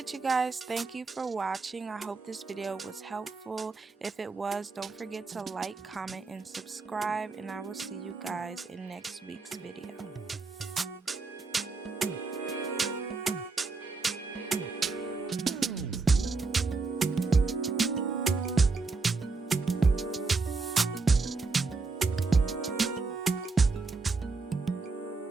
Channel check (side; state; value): left; quieter; 4.1 dB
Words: you guys, thank you for watching. I hope this video was helpful. If it was, don't forget to like, comment, and subscribe, and I will see you guys in next week's video.